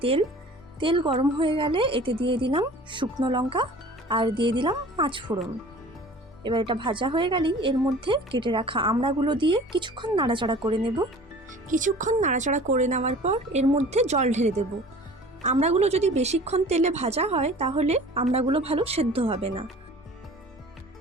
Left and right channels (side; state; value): both; normal; correlation 0.45